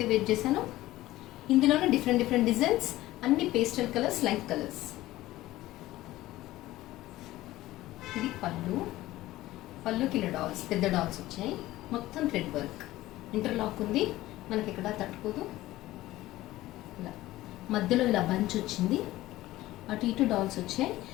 వేర్ చేశానో ఇందులోనే డిఫరెంట్ డిజైన్స్, అన్ని పేస్టల్ కలర్స్, లైట్ కలర్స్. ఇది పళ్ళుకి ఇలా డాల్స్, పెద్ద డాల్స్ వచ్చాయి. మొత్తం థ్రెడ్ వర్క్, ఇంటర్లాక్ ఉంది, మనకి ఇక్కడ తట్టుకోదు. ఇలా మధ్యలో ఇలా బంచ్ వచ్చింది, అటు ఇటు డాల్స్ వచ్చాయి.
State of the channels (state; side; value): quieter; right; 16.5 dB